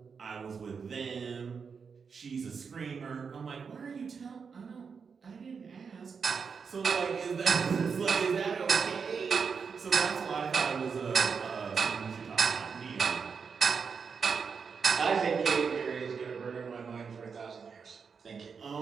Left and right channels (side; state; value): left; quieter; 5.8 dB